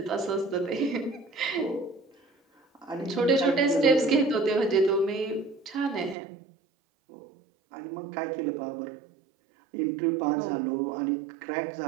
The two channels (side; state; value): left; drops out; at 6.2 s